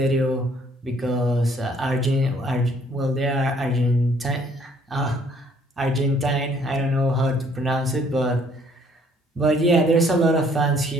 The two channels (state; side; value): normal; both; correlation 0.62